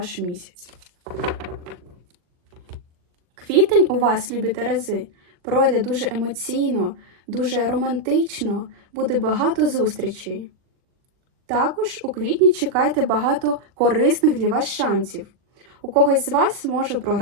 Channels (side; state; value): left; late; 40 ms